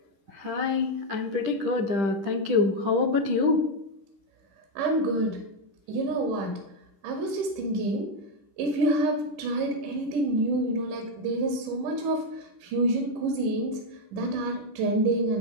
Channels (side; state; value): left; late; 10 ms